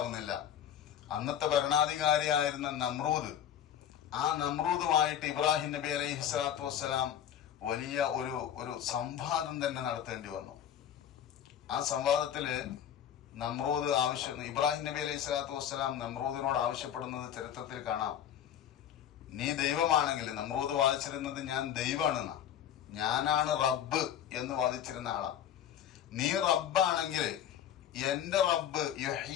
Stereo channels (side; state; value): right; quieter; 10.0 dB